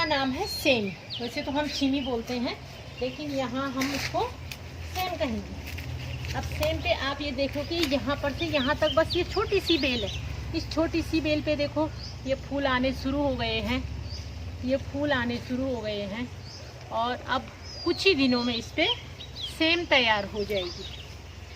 नाम है सेम। वैसे तो हम छीमी बोलते हैं, लेकिन यहाँ हम इसको सेम कहेंगे। अब सेम पे आप ये देखो कि यहाँ पर से यहाँ तक बस ये छोटी सी बेल है। इस छोटी सी बेल पे देखो ये फूल आने शुरू हो गए हैं, ये फूल आने शुरू हो गए हैं और अब कुछ ही दिनों में इस पे सेम तैयार हो जाएगी।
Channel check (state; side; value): identical; both; correlation 1.00